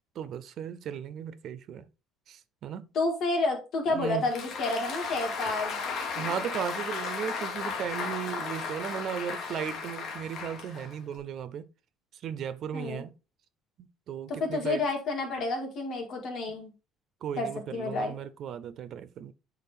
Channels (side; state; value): both; normal; correlation 0.53